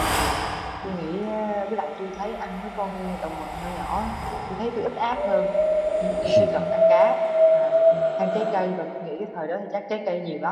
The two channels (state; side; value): identical; both; correlation 1.00